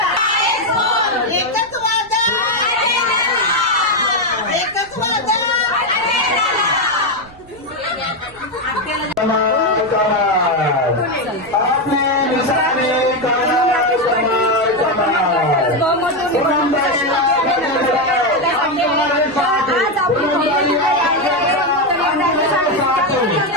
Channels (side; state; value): right; noise; rumble, 25 dB below the sound